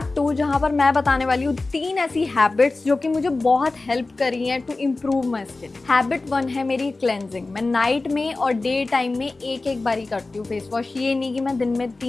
2 जहाँ पर मैं बताने वाली हूँ 3 ऐसी हैबिट्स जो कि मुझे बहुत हेल्प करी हैं to improve my skin. Habit 1 है मेरी क्लेंजिंग। मैं नाइट में और डे टाइम में एक बारी करती हूँ फेस वॉश। ये नहीं कि मैं दिन में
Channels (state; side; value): quieter; right; 3.4 dB